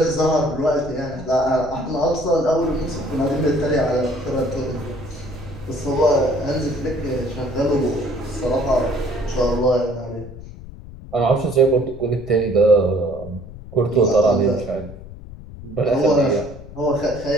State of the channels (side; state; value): left; noise; rumble, 15 dB below the sound